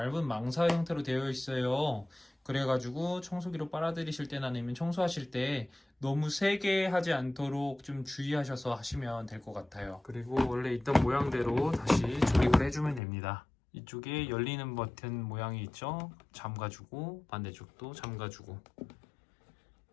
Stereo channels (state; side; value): drops out; right; at 13.0 s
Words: 망사 형태로 되어 있어요. 그래가지고 청소기로 빨아들이실 때나 아니면 청소하실 때 너무 세게 하지 않도록 좀 주의하셔서 하시면 될 것 같아요. 그리고 원래 있던 모양대로 다시 조립을 해주면 됩니다. 이쪽에 열리는 버튼 모양이 있죠? 잠가주고 반대쪽도 잠가주고